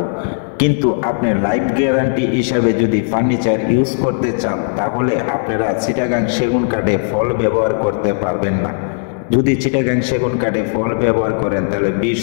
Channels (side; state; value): right; silent; digital silence